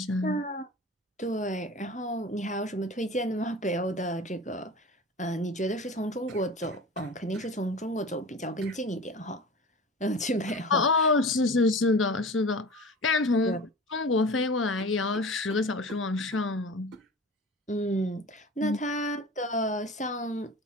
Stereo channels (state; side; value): normal; both; correlation 0.36